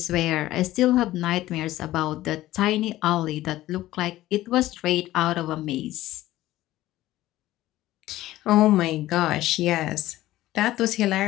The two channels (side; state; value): right; quieter; 15.6 dB